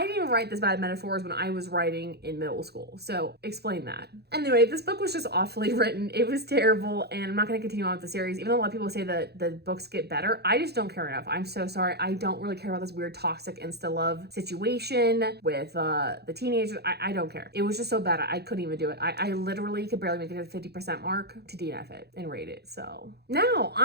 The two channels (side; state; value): left; late; 0.48 ms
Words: didn't write this bad metaphors when I was writing in middle school. So explain that. Anyway, this book was just awfully written. It was terrible, and I'm not going to continue on with the series. Even though a lot of people say that the books get better, I just don't care enough. I'm so sorry. I don't really care about this weird toxic insta-love situation with the teenagers. I don't care. It was just so bad. I couldn't even do it. I literally could barely make it to the 50% mark to DNF it and rate it. So now